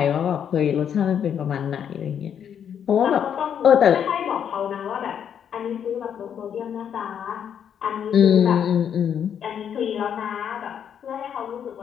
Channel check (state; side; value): quieter; right; 8.5 dB